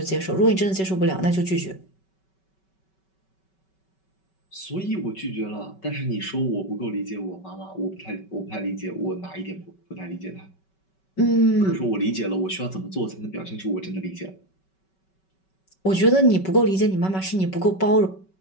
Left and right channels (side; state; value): right; late; 5.3 ms